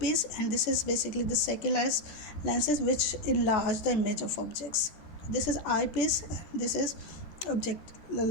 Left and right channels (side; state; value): right; late; 13 ms